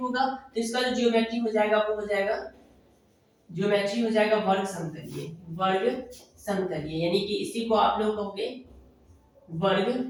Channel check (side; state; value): both; identical; correlation 1.00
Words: तो इसका जो ज्योमेट्री हो जाएगा वो हो जाएगा, ज्योमेट्री हो जाएगा वर्ग समतलीय, वर्ग समतलीय, यानी कि इसी को आप लोग कहोगे